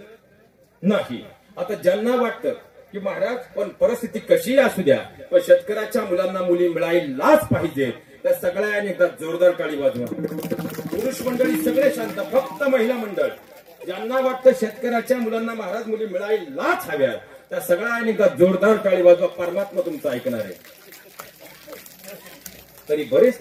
नाही. आता ज्यांना वाटतं की महाराज पण परिस्थिती कशी असू द्या पण शेतकऱ्याच्या मुलांना मुली मिळायलाच पाहिजे, त्या सगळ्यांनी एकदा जोरदार टाळी वाजवा. पुरुष मंडळी सगळे शांत, फक्त महिला मंडळ ज्यांना वाटतं शेतकऱ्याच्या मुलांना महाराज मुली मिळायलाच हव्या त्या सगळ्यांनी एकदा जोरदार टाळी वाजवा. परमात्मा तुमचं ऐकणार आहे. तरी बरेच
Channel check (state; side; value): identical; both; correlation 1.00